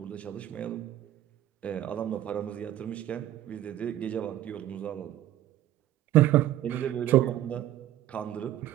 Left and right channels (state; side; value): quieter; left; 13.0 dB